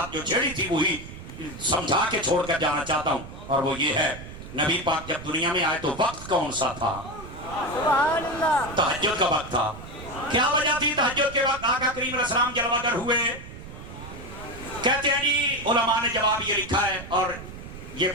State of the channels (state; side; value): noise; right; rumble, 13 dB below the sound